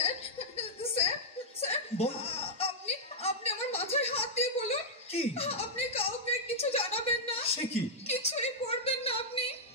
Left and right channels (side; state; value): both; normal; correlation -0.08